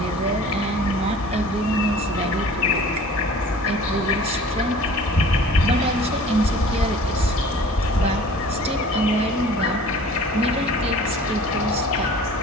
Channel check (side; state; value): both; normal; correlation 0.46